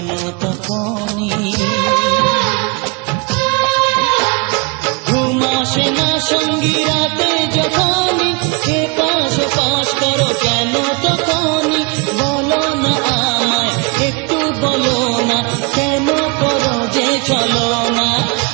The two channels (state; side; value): quieter; left; 30.0 dB